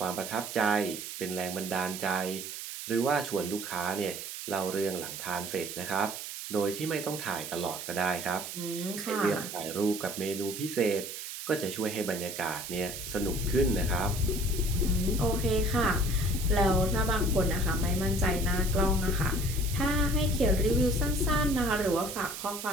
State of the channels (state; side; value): noise; right; hiss, 8 dB below the sound